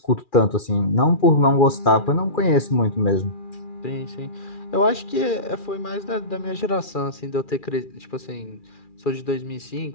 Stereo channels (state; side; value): late; right; 2.4 ms